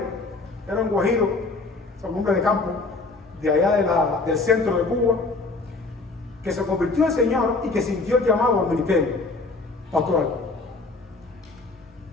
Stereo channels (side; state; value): right; quieter; 3.6 dB